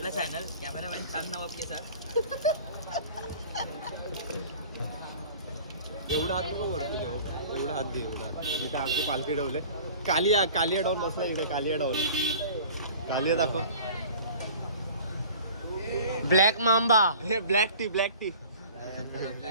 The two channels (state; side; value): inverted; both; correlation -0.45